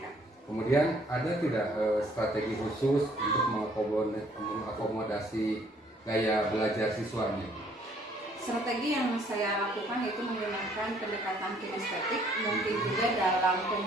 Kemudian ada tidak strategi khusus untuk mengakomodasi gaya belajar siswa ini? Strategi yang saya lakukan yaitu menggunakan pendekatan kinestetik. Mungkin juga dalam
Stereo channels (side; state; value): both; normal; correlation 0.62